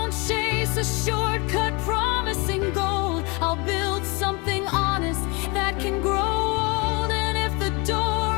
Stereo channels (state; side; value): quieter; right; 28.4 dB